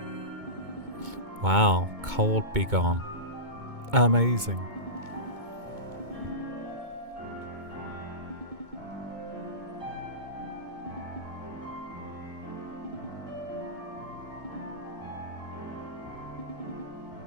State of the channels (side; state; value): left; late; 2.2 ms